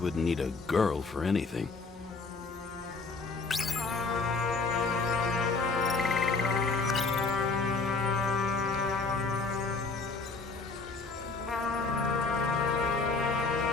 need a girl for anything.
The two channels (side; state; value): right; quieter; 4.0 dB